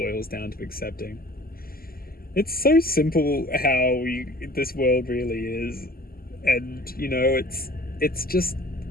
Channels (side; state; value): right; late; 0.43 ms